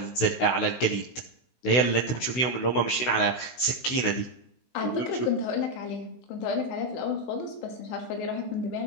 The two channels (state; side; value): late; right; 16 ms